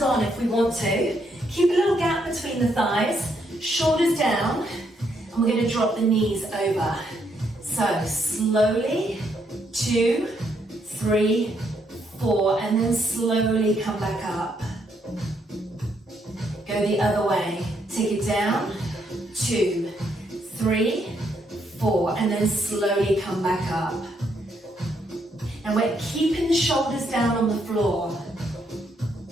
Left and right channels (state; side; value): normal; both; correlation 0.75